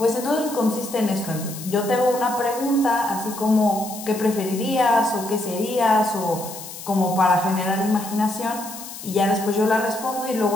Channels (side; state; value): left; noise; hiss, 12 dB below the sound